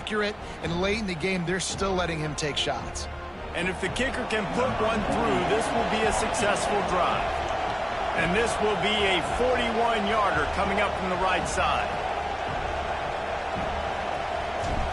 And late in the game, they're still letting him take shots. And if the kicker can put one through, this will be a successful drive. And this will be a 41-yarder coming up from the right side.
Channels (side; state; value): both; identical; correlation 1.00